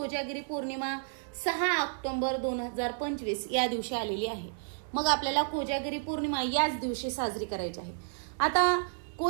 पौर्णिमा 6 ऑक्टोबर 2025 या दिवशी आलेली आहे. मग आपल्याला कोजागिरी पौर्णिमा याच दिवशी साजरी करायची आहे. आता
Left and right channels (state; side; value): silent; left; 57 dB below the other